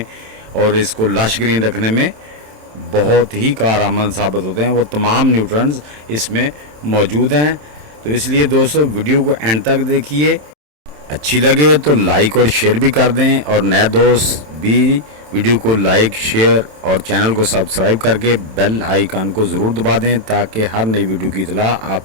और इसको लश ग्रीन रखने में बहुत ही कारआमद साबित होते हैं। वो तमाम न्यूट्रेंट्स इसमें मौजूद हैं। तो इसलिए दोस्तों, वीडियो को एंड तक देखिए। अच्छी लगे तो लाइक और शेयर भी कर दें, और नए दोस्त भी वीडियो को लाइक, शेयर और चैनल को सब्सक्राइब करके बेल आइकन को ज़रूर दबा दें ताकि हर नई वीडियो की इत्तला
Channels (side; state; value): left; late; 27 ms